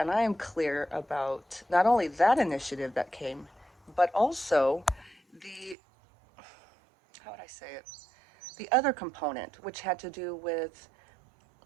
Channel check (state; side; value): drops out; left; at 5.8 s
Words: I am clear about not only that initiative that came, but also the, how would I say it, the other component, which had to do with